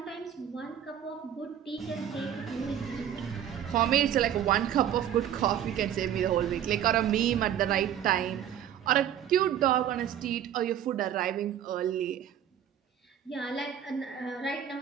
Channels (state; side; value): quieter; left; 10.1 dB